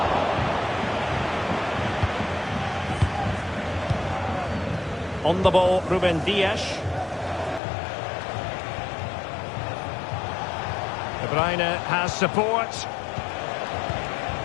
On the ball, Ruben Dias. De Bruyne has support.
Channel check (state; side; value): drops out; right; at 7.6 s